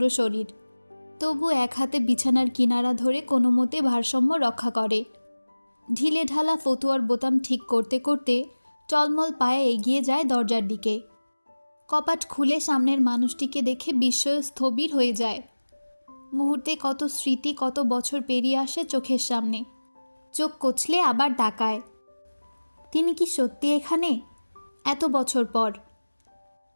শরীর। তবু এক হাতে বিছানার কিনারা ধরে কোনো মতে ভারসাম্য রক্ষা করে। ঢিলে ঢালা ফতুয়ার বোতাম ঠিক করতে করতে টলমল পায়ে এগিয়ে যায় দরজার দিকে। কপাট খুলে সামনের মানুষটিকে দেখে বিস্ময়ে স্থবির হয়ে যায়। মুহূর্তে কত স্মৃতি, কত বছর পেরিয়ে আসে চোখের সামনে। চোখ কচলে আবার তাকায়। তিনি কি সত্যি এখানে? এত বছর পর।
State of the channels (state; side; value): inverted; both; correlation -1.00